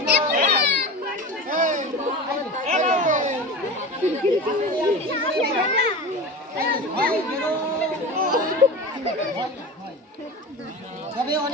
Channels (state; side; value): normal; both; correlation 0.29